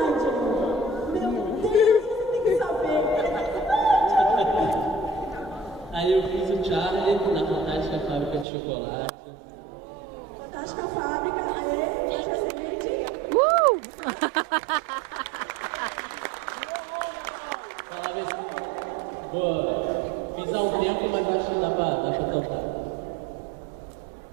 Meu Deus, você tem que saber. Aí eu fiz o Charlie na Fantástica Fábrica de Chocolate. Fantástica Fábrica, aê, já seguinte. Boa. Fiz há um tempo, mas acho que dá pra cantar.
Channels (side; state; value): left; drops out; at 8.5 s